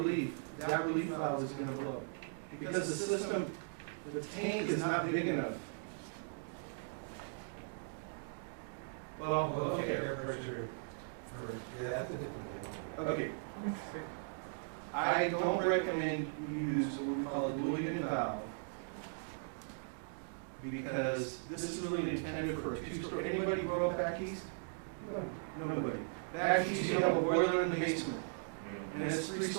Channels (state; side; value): silent; left; digital silence